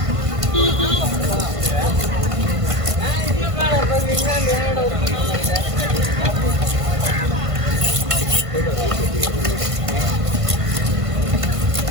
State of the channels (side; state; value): left; late; 1.5 ms